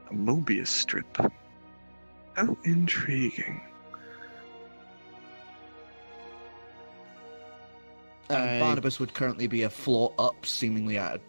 A Mobius strip. How intriguing. And Barnabas would currently be a floor up, seemingly at a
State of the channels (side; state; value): both; inverted; correlation -1.00